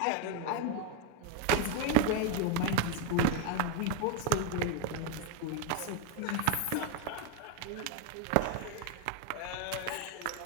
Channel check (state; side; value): different; both; correlation 0.02